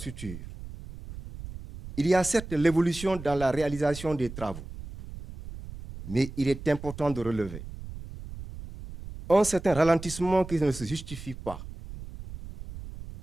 il y a certes l'évolution dans la réalisation des travaux, mais il est important de relever un certain ralentissement qui ne se justifie pas,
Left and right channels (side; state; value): right; noise; rumble, 12 dB below the sound